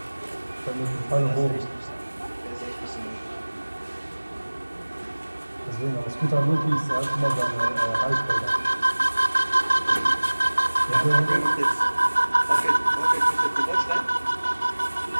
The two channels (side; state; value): both; inverted; correlation -1.00